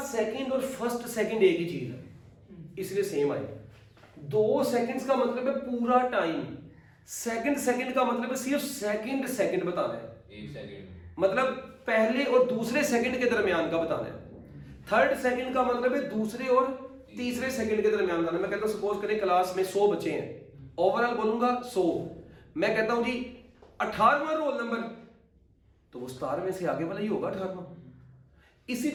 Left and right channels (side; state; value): both; identical; correlation 1.00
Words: सेकंड और फर्स्ट सेकंड एक ही चीज है, इसलिए सेम आएगा। 2 सेकंड्स का मतलब है पूरा टाइम, सेकंड सेकंड का मतलब है सिर्फ सेकंड सेकंड बताना है, 1 सेकंड मतलब पहले और दूसरे सेकंड के दरमियान का बताना है। थर्ड सेकंड का मतलब है दूसरे और तीसरे सेकंड के दरमियान बताना है। मैं कहता हूं सपोज करें क्लास में 100 बच्चे हैं, ओवरऑल बोलूंगा 100, मैं कहता हूं जी 18वां रोल नंबर, तो वो 17वें से आगे वाला ही होगा 18वां। इसी